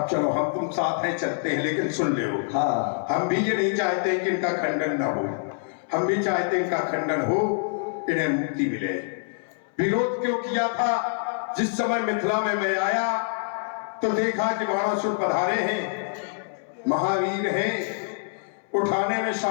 चलो हम तुम साथ है चलते हैं, लेकिन सुन ले हाँ हम भी ये नहीं चाहते कि इनका खंडन ना हो, हम भी चाहते हैं इनका खंडन हो, इन्हें मुक्ति मिले। विरोध क्यों किया था? जिस समय मिथिला में मैं आया तो देखा कि बाणासुर पधारे हैं, महावीर हैं, उठाने में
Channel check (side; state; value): right; silent; 61 dB below the other